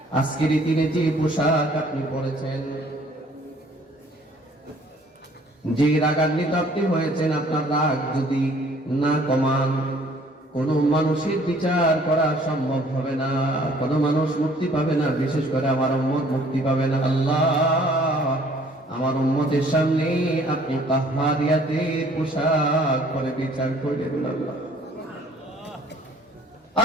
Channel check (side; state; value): both; normal; correlation 0.58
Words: আজকের দিনে যে পোশাক আপনি পরেছেন, যে রাগান্বিত আপনি হয়েছেন, আপনার রাগ যদি না কমান কোন মানুষের বিচার করা সম্ভব হবে না, কোন মানুষ মুক্তি পাবে না, বিশেষ করে আমার উম্মত মুক্তি পাবে না। আল্লাহ আমার উম্মতের সামনে আপনি কাহ্হারিয়াতের পোশাক পরে বিচার করবেন। আল্লাহ